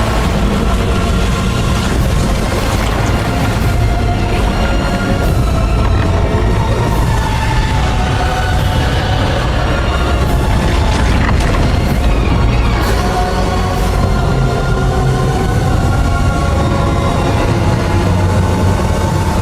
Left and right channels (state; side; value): identical; both; correlation 1.00